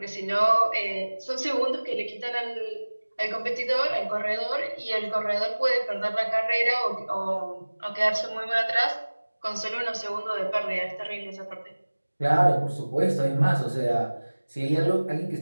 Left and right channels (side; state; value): both; inverted; correlation -1.00